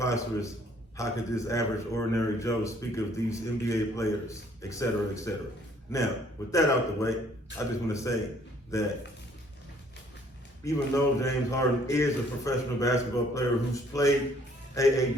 How could this average, ordinary Joe speak of these NBA players, et cetera, et cetera. Now, with that out the way, I just want to say that even though James Harden is a professional basketball player who's played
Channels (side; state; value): both; normal; correlation 0.61